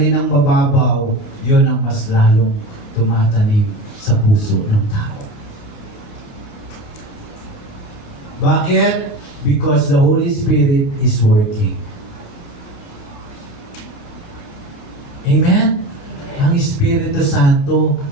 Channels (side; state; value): right; late; 28 ms